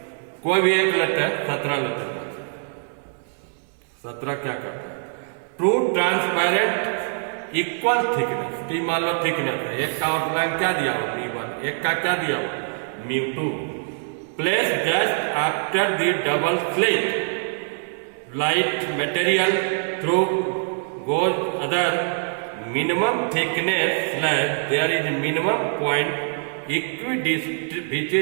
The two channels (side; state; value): left; silent; digital silence